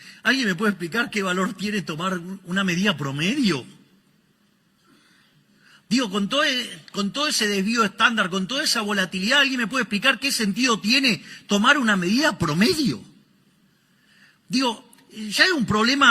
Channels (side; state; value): both; identical; correlation 1.00